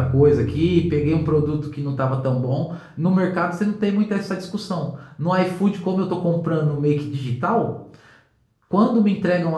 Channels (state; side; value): identical; both; correlation 1.00